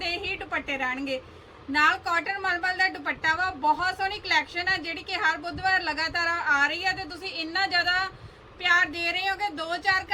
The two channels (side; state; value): both; identical; correlation 1.00